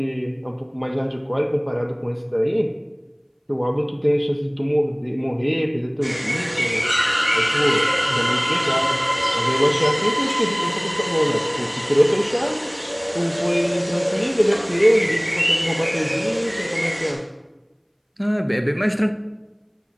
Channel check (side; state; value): both; identical; correlation 1.00